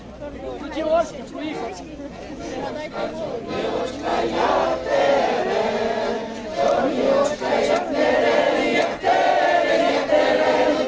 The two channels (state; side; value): identical; both; correlation 1.00